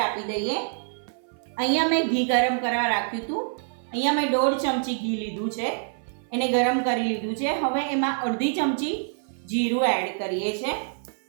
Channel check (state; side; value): silent; left; 57 dB below the other